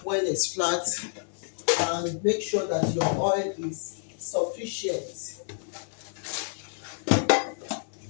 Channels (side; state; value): right; silent; digital silence